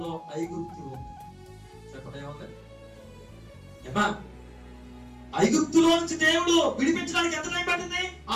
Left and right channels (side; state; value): both; identical; correlation 1.00